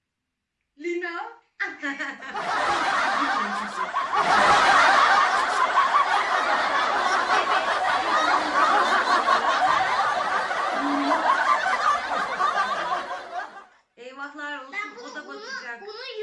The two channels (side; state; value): both; identical; correlation 1.00